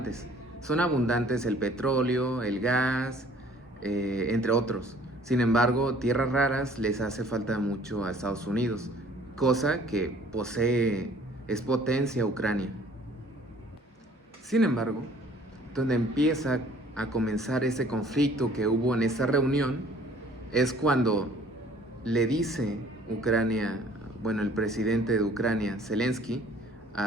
Son abundantes el petróleo, el gas, entre otros. Sin embargo, tierras raras les hace falta mucho a Estados Unidos, cosa que es potencia Ucrania. Sin embargo, donde empieza a comenzar ese conflicto que hubo en esta reunión es cuando le dice Ucrania, el presidente de Ucrania, Zelensky,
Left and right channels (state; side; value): normal; both; correlation 0.54